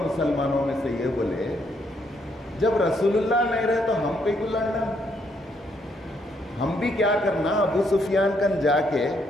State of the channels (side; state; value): both; normal; correlation 0.73